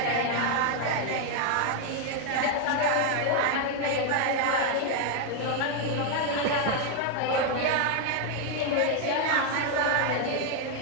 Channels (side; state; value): both; different; correlation 0.00